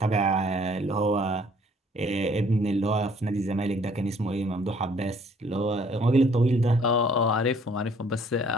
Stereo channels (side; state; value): both; normal; correlation 0.60